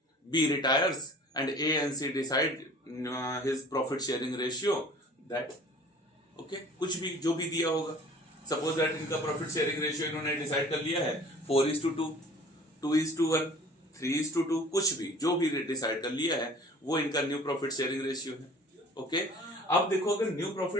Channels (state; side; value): normal; both; correlation 0.48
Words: B retires and A and C decide his profit sharing ratio that okay, कुछ भी जो भी दिया होगा, सपोज दैट इनका प्रॉफिट शेयरिंग रेशियो इन्होंने डिसाइड कर लिया है 4:2, 2:1, 3:2, कुछ भी जो भी डिसाइड कर लिया है वो इनका न्यू प्रॉफिट शेयरिंग रेशियो है। ओके, अब देखो अगर न्यू